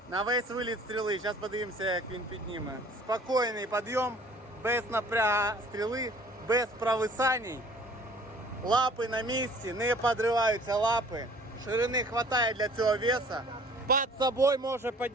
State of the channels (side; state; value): both; normal; correlation 0.52